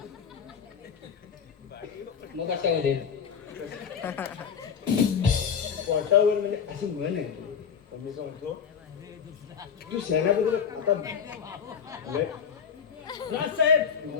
मग कशामध्ये पोटावर म्हणजे अशी म्हण आहे. मी सांगतो तू सेनापतीला आता राजसाहेब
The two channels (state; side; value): quieter; right; 7.1 dB